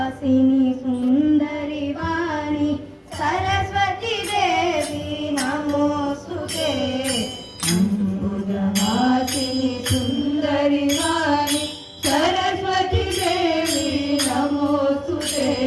सुंदरी वाणी सरस्वती देवी नमोस्तुते। अंबुजवासिनी सुंदरी वाणी सरस्वती देवी नमोस्तुते।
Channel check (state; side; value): identical; both; correlation 1.00